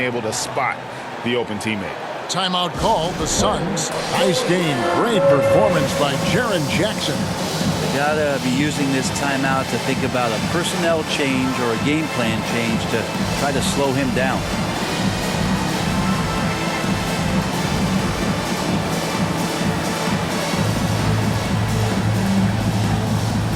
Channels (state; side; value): identical; both; correlation 1.00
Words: to spot the open teammate. Timeout called the Suns. Nice game. Great performance by Jaren Jackson. They gotta be using this timeout to think about a personnel change or a game plan change to try to slow him down.